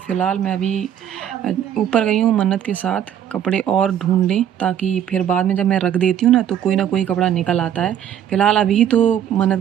मैं अभी ऊपर गई हूँ मन्नत के साथ कपड़े और ढूँढने, ताकि फिर बाद में जब मैं रख देती हूँ ना तो कोई ना कोई कपड़ा निकल आता है। फ़िलहाल अभी तो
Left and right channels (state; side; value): quieter; left; 9.8 dB